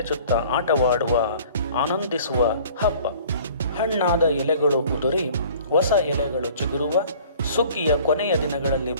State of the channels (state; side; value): inverted; both; correlation -0.50